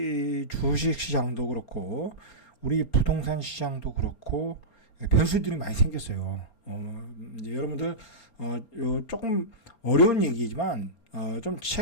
주식 시장도 그렇고 우리 부동산 시장도 그렇고 변수들이 많이 생겼어요. 이제 여러분들 요 조금 어려운 얘기지만 좀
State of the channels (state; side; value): late; right; 4.3 ms